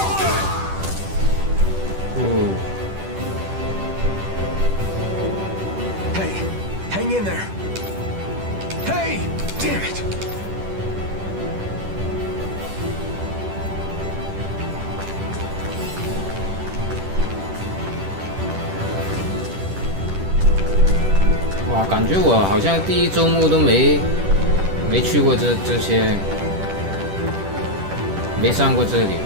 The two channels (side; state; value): left; late; 10 ms